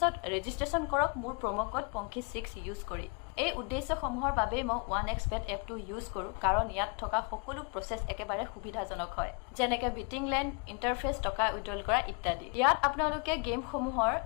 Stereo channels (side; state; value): right; quieter; 32.5 dB